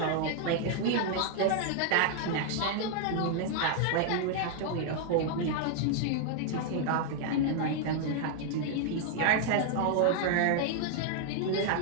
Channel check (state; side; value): different; both; correlation 0.00